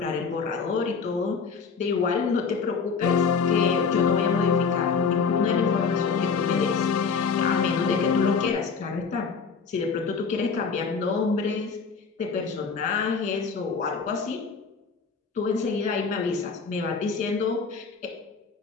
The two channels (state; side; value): quieter; right; 5.4 dB